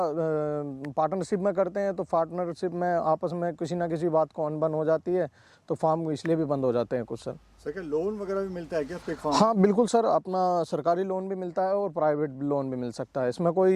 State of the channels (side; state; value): both; identical; correlation 1.00